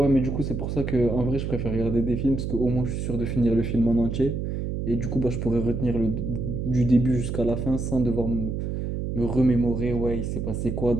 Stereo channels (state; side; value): noise; right; hum, 3 dB below the sound